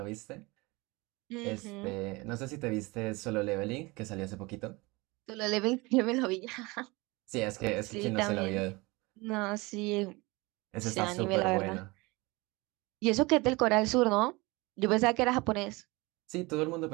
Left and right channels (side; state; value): left; quieter; 24.1 dB